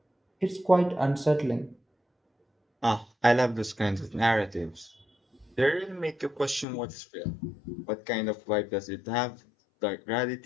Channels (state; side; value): drops out; right; at 6.7 s